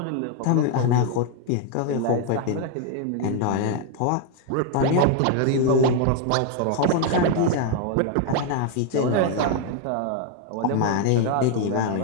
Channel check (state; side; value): different; both; correlation 0.00